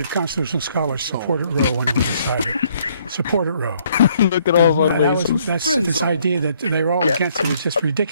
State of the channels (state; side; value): inverted; both; correlation -0.66